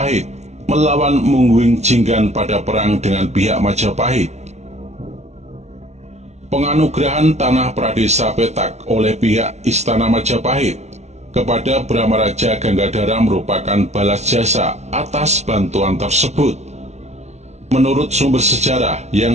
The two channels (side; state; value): left; late; 0.32 ms